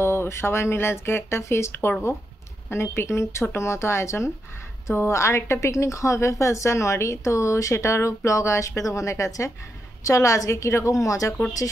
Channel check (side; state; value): both; normal; correlation 0.84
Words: সবাই মিলে আজকে একটা ফিস্ট করব, মানে পিকনিক, ছোটো মতো আয়োজন। তো আরেকটা পিকনিক হবে 1 জানুয়ারি, তো সেটারও ব্লগ আসবে তোমাদের কাছে। চলো আজকে কীরকম মজা করছি